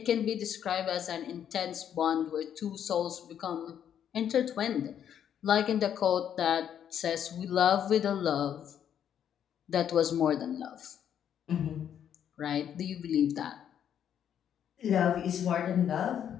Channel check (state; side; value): quieter; right; 9.3 dB